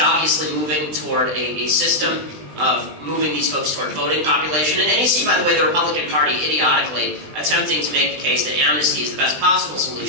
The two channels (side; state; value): left; late; 20 ms